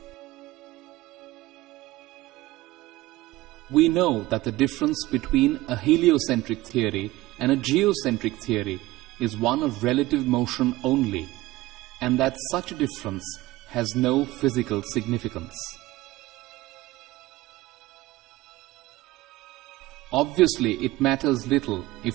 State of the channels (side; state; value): left; quieter; 18.1 dB